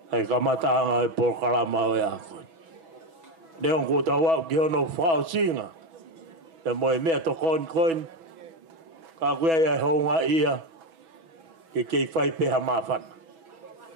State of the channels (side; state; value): left; late; 6.1 ms